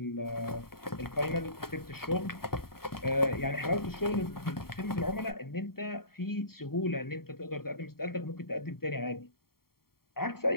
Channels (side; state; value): right; late; 0.93 ms